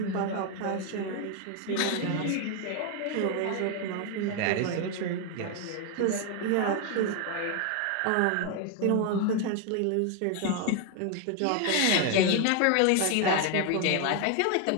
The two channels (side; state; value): both; different; correlation 0.01